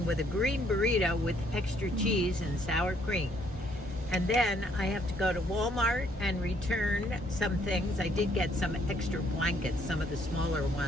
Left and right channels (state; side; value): normal; both; correlation 0.67